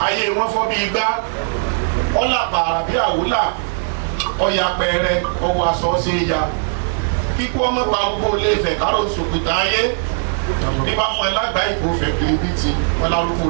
ayé wọn fọ́ bí igbá wọ́n là pààrà bí àwòlà ọ̀yà pẹ̀rẹ̀ ọwọ́ aṣọ sí ya kíkó ọmọ parúgbó lè fẹ̀ kárò sòkòtà ayé bí bá fún ẹ lágbàá ìkó fẹ̀ kiribiti wọn lárúgbó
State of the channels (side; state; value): left; silent; digital silence